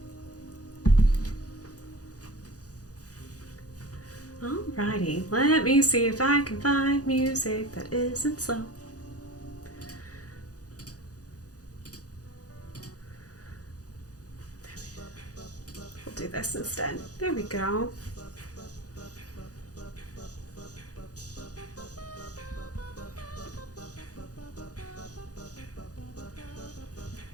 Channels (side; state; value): right; late; 0.67 ms